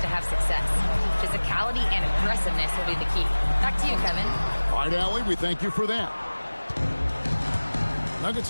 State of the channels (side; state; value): both; inverted; correlation -1.00